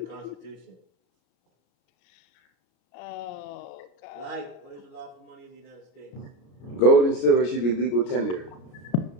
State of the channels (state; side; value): late; right; 33 ms